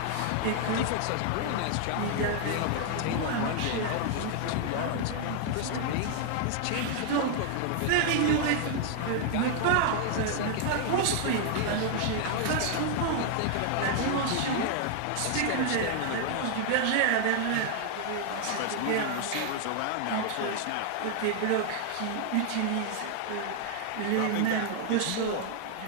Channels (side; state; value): both; different; correlation 0.00